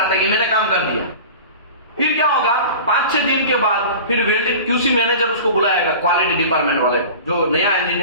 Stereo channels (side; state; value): both; inverted; correlation -0.36